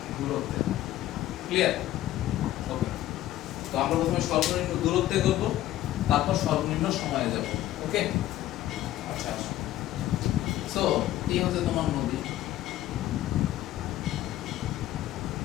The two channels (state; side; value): quieter; right; 14.3 dB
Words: দূরত্বে, ক্লিয়ার? ওকে, তো আমরা প্রথমে সর্বনিম্ন দূরত্বে করব, তারপর সর্বনিম্ন সময়ে যাব, ওকে? আচ্ছা, সো এই হচ্ছে তোমার নদী,